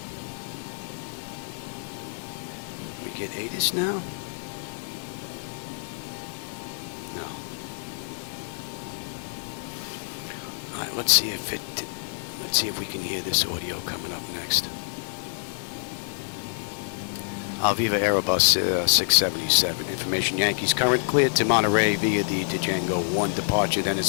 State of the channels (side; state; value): right; silent; digital silence